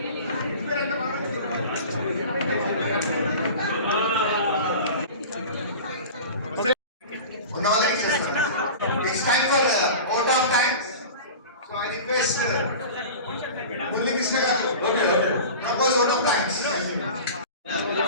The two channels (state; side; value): inverted; both; correlation -0.35